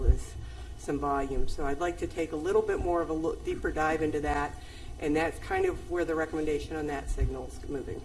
is some volume. So I'd like to take a little bit more of a deeper dive into that, and that's kind of where the recommendation on that signal is moving.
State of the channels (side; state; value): both; identical; correlation 1.00